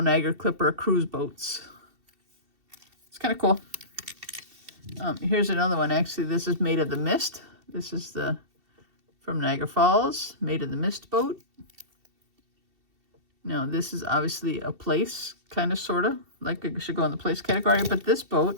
Clipper, cruise boats. It's kind of cool. Here's another one. Actually, this is Made of the Mist. This is the from Niagara Falls, Made of the Mist boat. Now, this is obviously a place, kind of, sort of, like it should go in the place category, but this boat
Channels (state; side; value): late; left; 2.7 ms